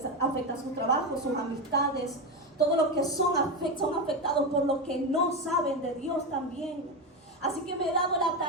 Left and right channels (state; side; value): normal; both; correlation 0.14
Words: afecta su trabajo, sus amistades. Todo lo que son afectados por lo que no saben de Dios también. Así que me he dado la